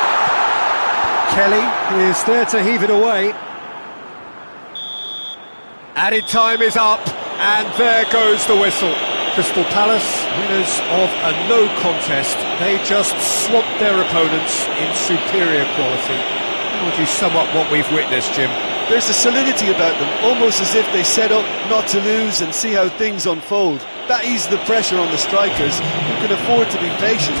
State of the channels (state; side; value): inverted; both; correlation -1.00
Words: Kelly is there to heave it away. Added time is up, and there goes the whistle. Crystal Palace, winners of a no contest. They just swamped their opponents in superior quality. How would you sum up what we've witnessed, Jim? There's a solidity about them, almost as if they set up not to lose and see how things unfold. That eases the pressure on the strikers, who can afford to be patient,